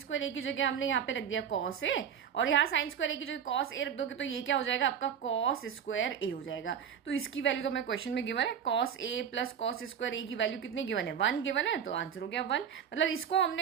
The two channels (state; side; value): quieter; left; 8.1 dB